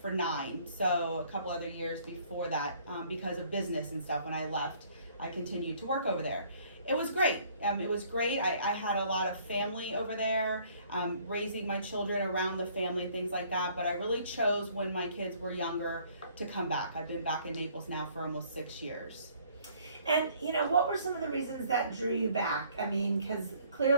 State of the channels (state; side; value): inverted; both; correlation -0.60